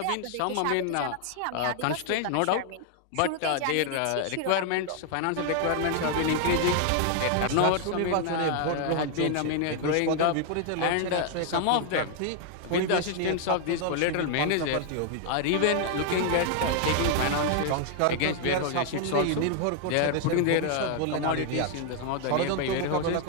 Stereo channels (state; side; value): different; both; correlation 0.00